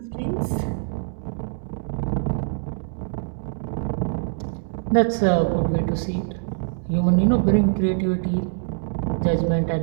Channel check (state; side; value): silent; left; digital silence